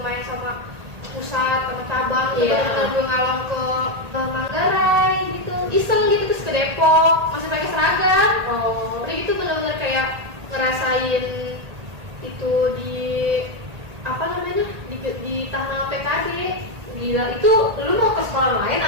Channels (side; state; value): left; late; 1.8 ms